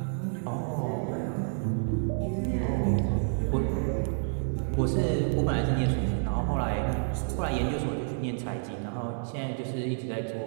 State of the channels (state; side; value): silent; left; 58 dB below the other